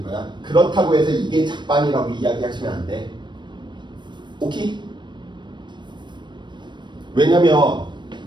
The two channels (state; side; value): late; left; 0.22 ms